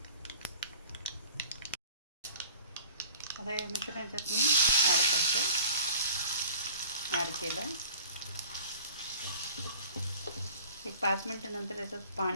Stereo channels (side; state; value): both; inverted; correlation -0.45